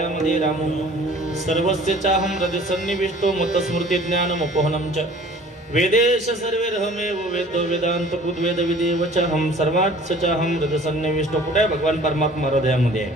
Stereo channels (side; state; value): both; normal; correlation 0.49